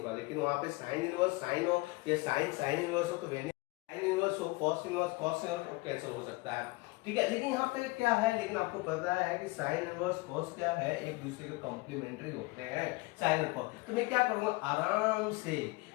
लेकिन वहां पे साइन इनवर्स साइन हो या साइन इनवर्स हो तो वेनिश, साइन इनवर्स हो कॉस इनवर्स कॉस इनवर्स तो कैंसिल हो सकता है। ठीक है, लेकिन यहाँ पे क्या है, लेकिन आपको पता है कि साइन इनवर्स कॉस क्या है, एक दूसरे के कॉम्प्लीमेंट्री होते हैं साइन और कॉस। तो मैं क्या करूंगा, आराम से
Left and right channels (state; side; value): quieter; right; 24.0 dB